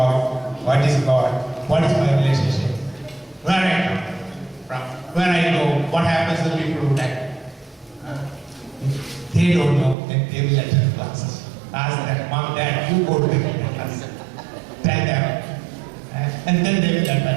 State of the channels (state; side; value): drops out; left; at 10.0 s